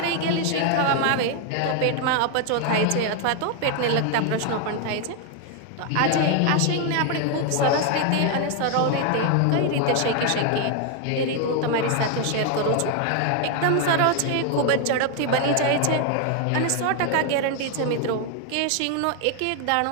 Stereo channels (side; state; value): both; different; correlation 0.01